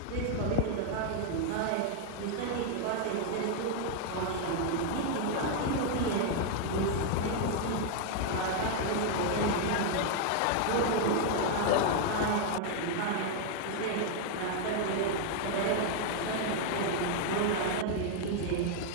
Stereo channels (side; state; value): both; different; correlation 0.00